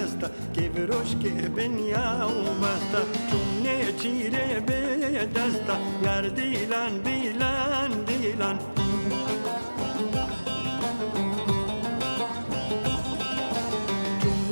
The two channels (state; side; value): inverted; both; correlation -1.00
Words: که بروش که بنیا و بسته چونه چیره به دسته یار دیلان دیلان دیلان